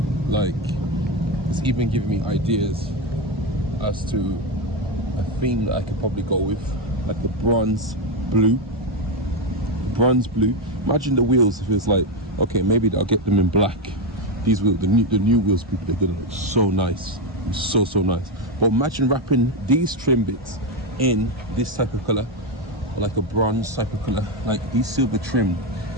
Like, it's even giving me ideas as to a theme that I could probably go with, like the bronze blue. Imagine the wheels if it's like, okay, maybe I'll get them in black. These wheels, the new wheels, people, they're gonna look so nice, so nice. But imagine wrapping these trim bits in this type of color, like a bronze type of color, like these silver trim.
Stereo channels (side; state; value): both; normal; correlation 0.10